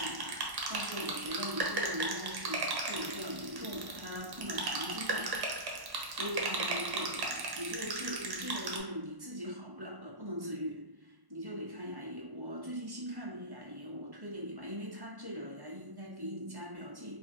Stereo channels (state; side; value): late; left; 1.1 ms